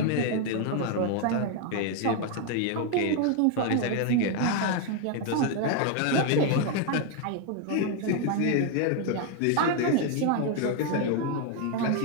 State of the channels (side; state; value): both; different; correlation 0.01